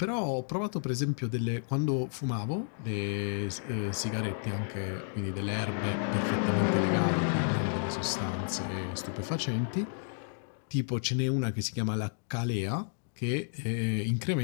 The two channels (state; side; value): silent; right; digital silence